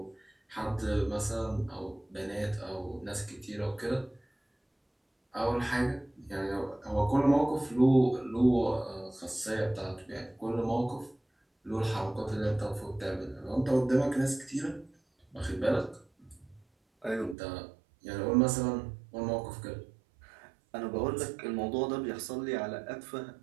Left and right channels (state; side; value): drops out; left; at 17.4 s